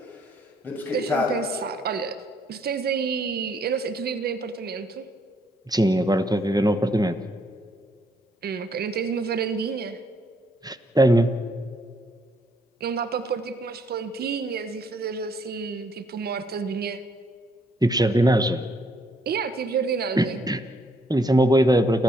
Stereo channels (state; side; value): normal; both; correlation 0.69